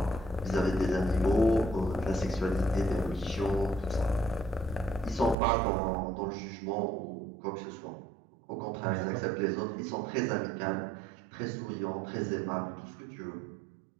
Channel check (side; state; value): left; drops out; at 5.4 s